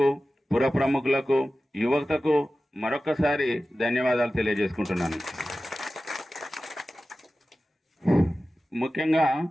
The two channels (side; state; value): both; normal; correlation 0.95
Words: పుర ప్రముఖులకు, యువతకు మరొకసారి ధన్యవాదాలు తెలియజేసుకుంటున్నాను. ముఖ్యంగా